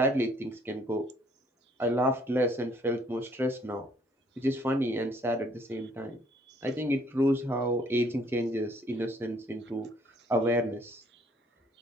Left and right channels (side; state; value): both; normal; correlation 0.63